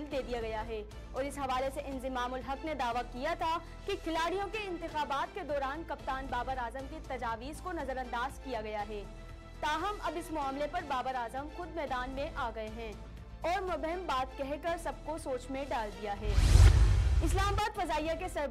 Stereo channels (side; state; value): both; identical; correlation 1.00